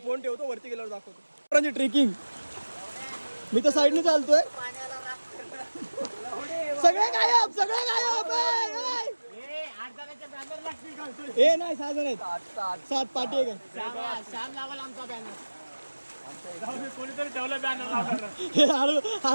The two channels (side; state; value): both; inverted; correlation -1.00